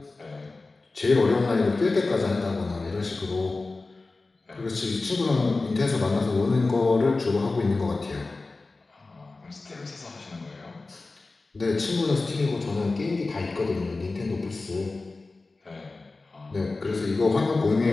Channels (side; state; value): right; quieter; 3.5 dB